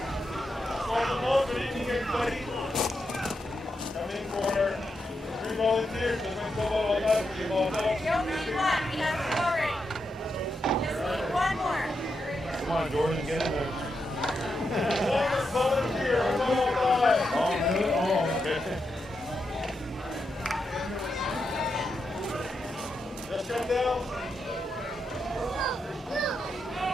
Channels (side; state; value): both; normal; correlation 0.85